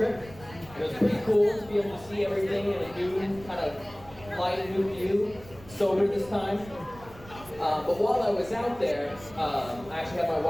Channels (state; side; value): noise; right; rumble, 19 dB below the sound